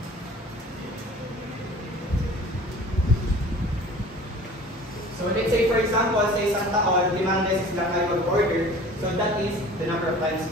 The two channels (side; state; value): both; normal; correlation 0.44